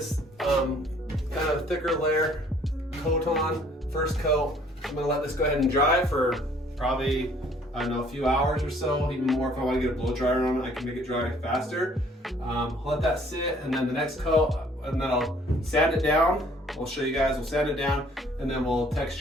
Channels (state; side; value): normal; both; correlation 0.58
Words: kind of thicker layer coat on, first coat, I'm gonna let this go ahead and dry for probably, I don't know, a few hours or so, even more. If I wanna get a blow dryer on it, I can make it dry faster. I'll let that sit, and then the next coat, and then I'll sand it down. I'll show you guys, we'll sand it down, and then we'll